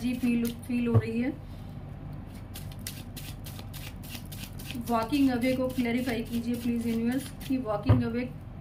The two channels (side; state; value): both; identical; correlation 1.00